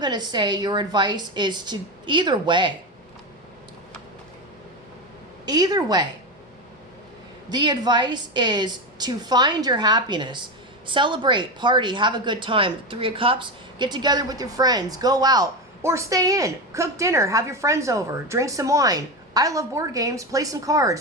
to say your advice is to either way. Either way. The advice is to find your happiness. Celebrate, party, have a good time. Three of Cups, get together with your friends, go out, or stay in, cook dinner, have your friends over, drink some wine. I love board games, play some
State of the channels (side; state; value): both; normal; correlation 0.17